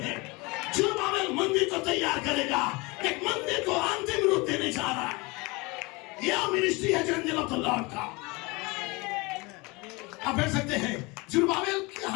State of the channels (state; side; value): quieter; right; 25.6 dB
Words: है। जुरुब्बाबेल मंदिर को तैयार करेगा, एक मंदिर को अंतिम रूप देने जा रहा है। यह मिनिस्ट्री है एंजल ऑफ द लॉर्ड का। आप कह सकते हैं जुरुब्बाबेल के